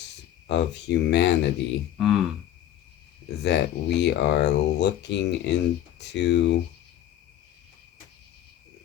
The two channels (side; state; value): right; quieter; 11.9 dB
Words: of humanity, that we are looking into